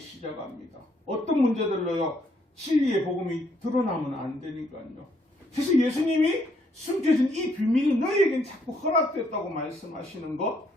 어떤 문제들로요 진리의 복음이 드러나면 안 되니까요. 그래서 예수님이 숨겨진 이 비밀이 너희에겐 자꾸 허락됐다고 말씀하시는 것,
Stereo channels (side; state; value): both; normal; correlation 0.71